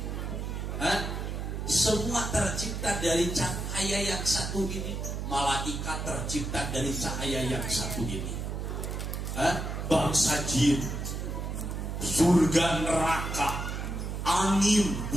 semua tercipta dari cahaya yang satu ini. Malaikat tercipta dari cahaya yang satu ini. Bangsa jin, surga neraka, angin,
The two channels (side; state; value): right; noise; hum, 4 dB below the sound